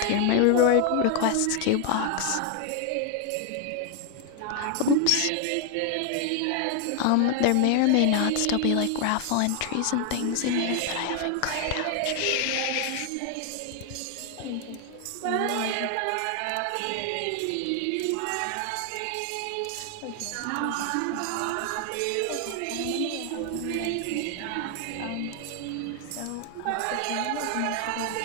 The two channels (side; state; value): both; different; correlation 0.00